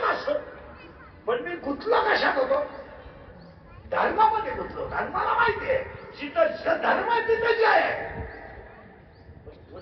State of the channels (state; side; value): identical; both; correlation 1.00